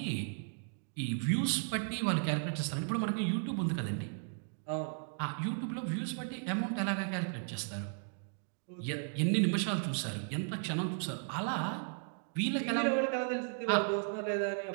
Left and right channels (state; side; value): silent; left; 54 dB below the other